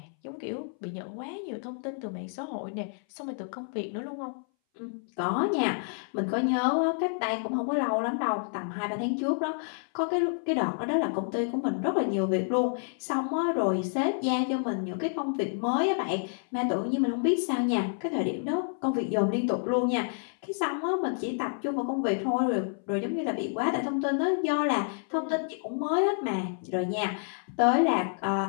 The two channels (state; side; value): silent; right; 58 dB below the other